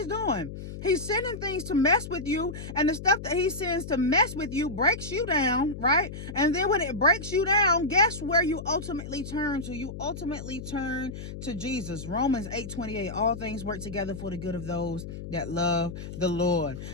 doing. He's sending things to mess with you, and the stuff that he sends to mess with you breaks you down, right? And then when it breaks you down, guess where you ultimately turn to? You ultimately turn to Jesus. Romans 8:28, all things work together for the good of those that love the Lord.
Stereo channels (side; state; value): left; noise; hum, 9 dB below the sound